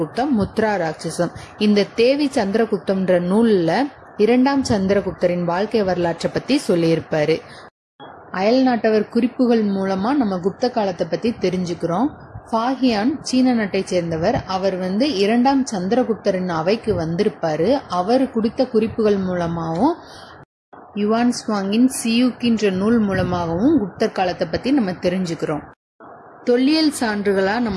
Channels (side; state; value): both; identical; correlation 1.00